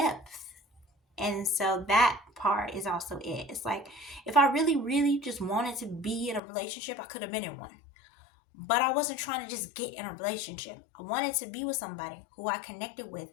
And so that part is also it. It's like, if I really, really just wanted to be in a relationship, I could have been in one. But I wasn't trying to just get in a relationship. I wanted to be with somebody who I connected with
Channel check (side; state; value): right; drops out; at 6.4 s